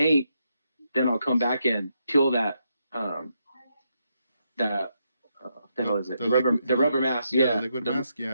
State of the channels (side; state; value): both; inverted; correlation -0.80